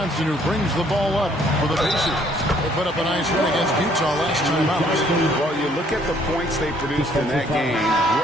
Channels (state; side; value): normal; both; correlation 0.63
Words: who brings the ball up for the Pacers. They put up a nice win against Utah last time out. Well, you look at the points they produced in that game.